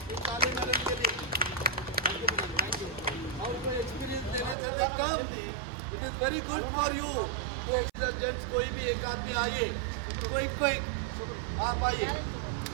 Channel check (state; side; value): drops out; left; at 4.5 s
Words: ये ताली मारने के लिए। Thank you, madam. Thank you. और कोई experience देना चाहते कम? It is very good for you. तो एक्सर्जेंट्स कोई भी एक आदमी आइए, क्विक आप आइए।